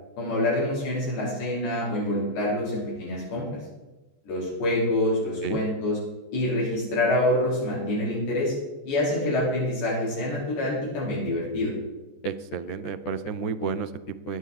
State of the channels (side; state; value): right; late; 14 ms